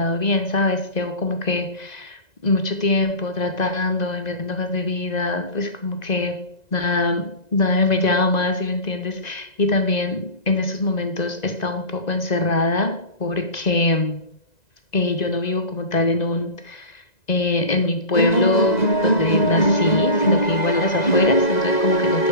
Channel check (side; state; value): right; late; 2.0 ms